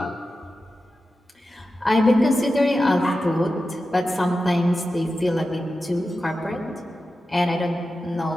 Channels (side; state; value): both; normal; correlation 0.92